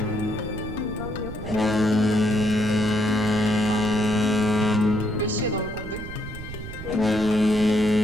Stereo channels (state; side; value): noise; right; rumble, 11 dB below the sound